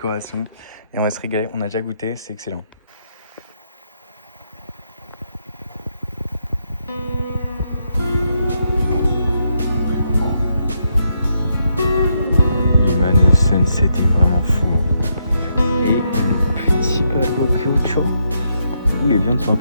et on va se régaler. On a déjà goûté, c'est excellent. Les man, le sunset est vraiment fou. Et le petit barbecue, où les viandes sont un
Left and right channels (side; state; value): both; inverted; correlation -0.79